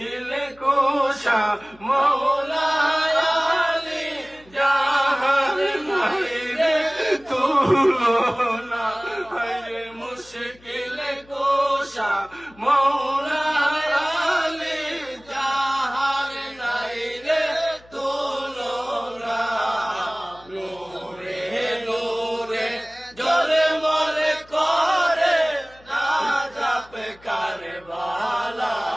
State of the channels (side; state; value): left; noise; hum, 27 dB below the sound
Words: কুশা মওলা আলী, যাহার নাই রে তুলনা। হায়রে মুশকিল কুশা মওলা আলী, যাহার নাই রে তুলনা। নূরে নূরে ঝলমল করে নাজাব কারবালা।